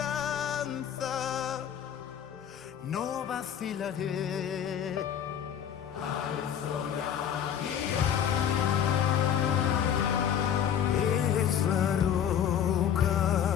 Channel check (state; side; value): quieter; right; 9.1 dB